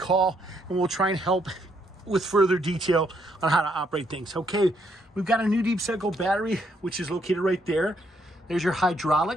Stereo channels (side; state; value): both; normal; correlation 0.73